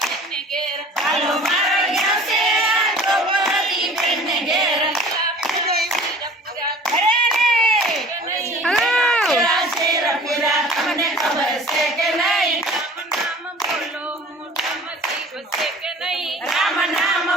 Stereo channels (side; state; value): both; normal; correlation 0.45